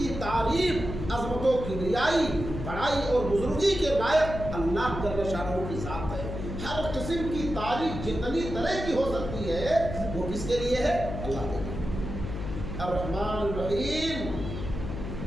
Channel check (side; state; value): left; noise; hum, 6 dB below the sound